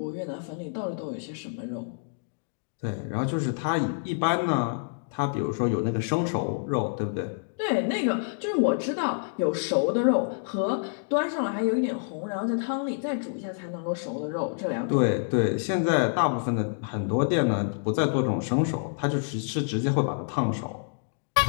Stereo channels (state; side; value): silent; right; digital silence